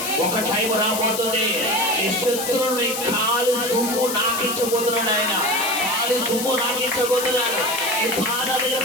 ఒక టైం రాబోతుంది. ఈ శత్రువుని కాలు దుమ్ము నాకించబోతున్నాడు ఆయన, కాలు దుమ్ము నాకించబోతున్నాడు. ఈ పాదాల దగ్గర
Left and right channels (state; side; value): noise; left; hiss, 5 dB below the sound